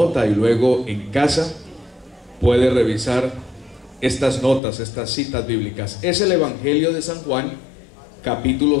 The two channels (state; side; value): drops out; right; at 4.6 s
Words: y luego en casa puede revisar estas notas, estas citas bíblicas. Es el Evangelio de San Juan, capítulo